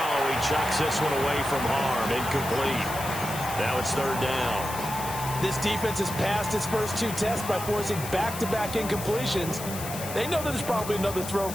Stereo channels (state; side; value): noise; left; hiss, 9 dB below the sound